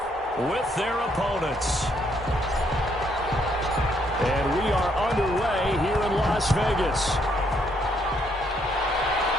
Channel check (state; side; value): normal; both; correlation 0.71